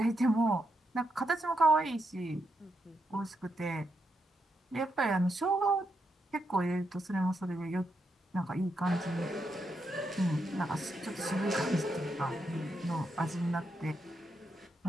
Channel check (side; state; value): both; normal; correlation 0.82